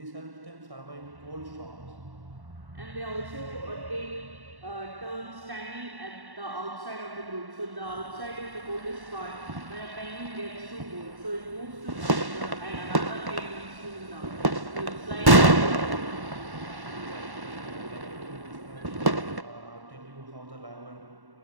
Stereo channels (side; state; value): left; late; 1.1 ms